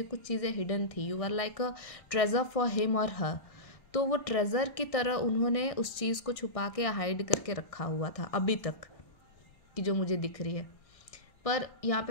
कुछ चीज़ें हिडन थी। You are like a treasure for him और हर। तो वो ट्रेजर की तरह उन्होंने उस चीज़ को छुपा के हाइड करके रखा हुआ था अभी तक, कि जो मुझे दिख रही है। पर यहाँ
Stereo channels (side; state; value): right; late; 1.6 ms